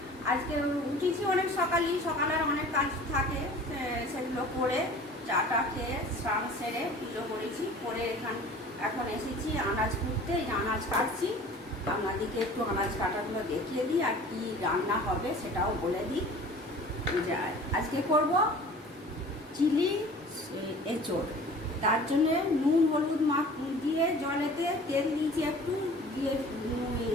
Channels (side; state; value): both; normal; correlation 0.45